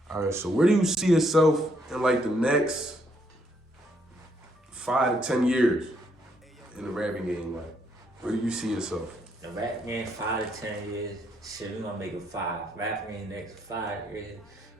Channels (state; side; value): normal; both; correlation 0.72